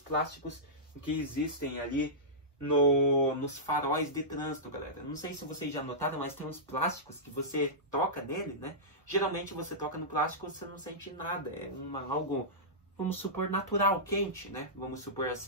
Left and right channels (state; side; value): normal; both; correlation -0.15